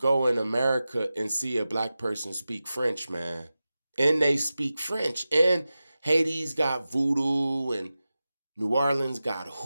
in America and see a black person speak French, man? And they speak French. And Haiti's got voodoo and New Orleans got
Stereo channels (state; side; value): inverted; both; correlation -0.94